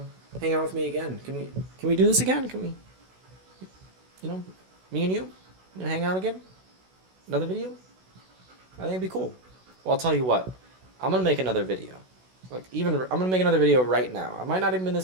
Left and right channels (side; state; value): left; late; 16 ms